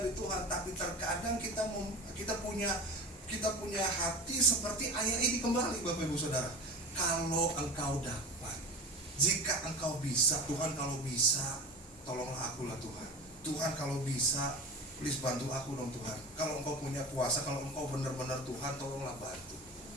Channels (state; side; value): normal; both; correlation 0.32